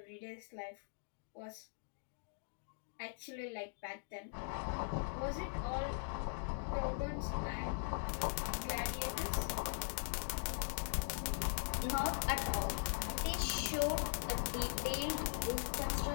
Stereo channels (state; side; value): silent; right; digital silence